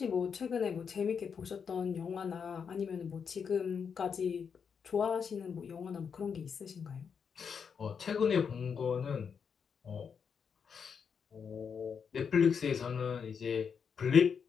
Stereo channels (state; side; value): quieter; right; 6.6 dB